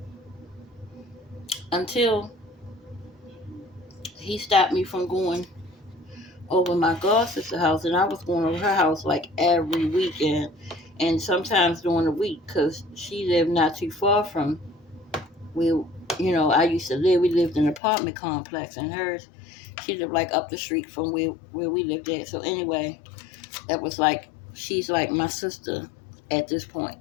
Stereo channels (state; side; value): drops out; right; at 17.8 s